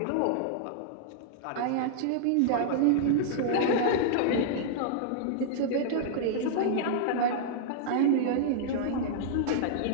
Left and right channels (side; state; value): both; different; correlation -0.01